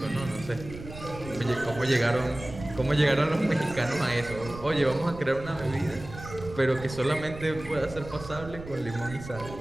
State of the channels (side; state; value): right; noise; rumble, 13 dB below the sound